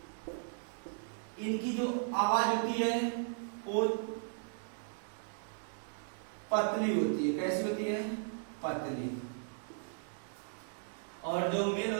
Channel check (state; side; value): silent; left; digital silence